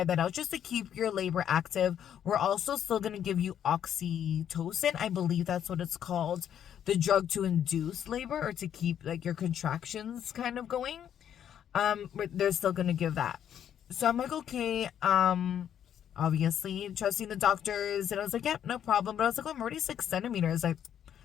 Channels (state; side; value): quieter; right; 9.6 dB